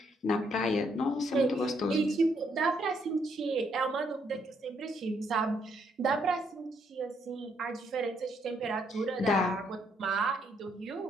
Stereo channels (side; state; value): both; normal; correlation 0.73